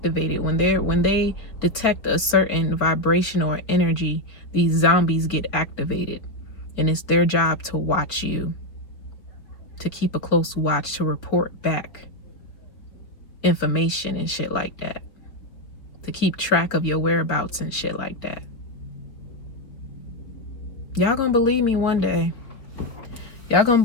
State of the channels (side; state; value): right; late; 4.1 ms